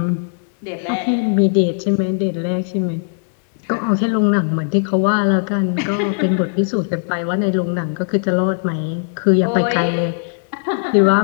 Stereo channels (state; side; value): silent; right; digital silence